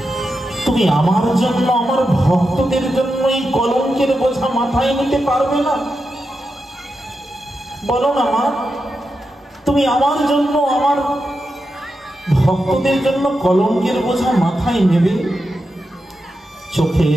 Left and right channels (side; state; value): both; normal; correlation 0.88